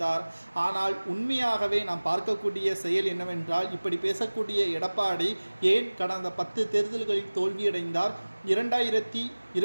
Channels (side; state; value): both; inverted; correlation -1.00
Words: ஆனால் உண்மையாகவே நாம் பார்க்கக்கூடிய செயல் என்னவென்றால், இப்படி பேசக்கூடிய எடப்பாடி ஏன் கடந்த 10 தேர்தல்களில் தோல்வியடைந்தார்?